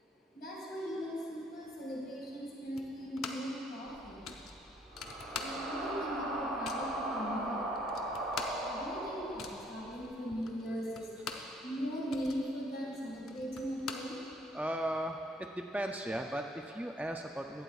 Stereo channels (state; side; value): normal; both; correlation 0.65